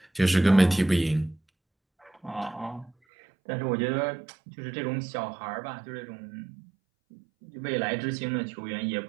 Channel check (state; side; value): drops out; left; at 2.9 s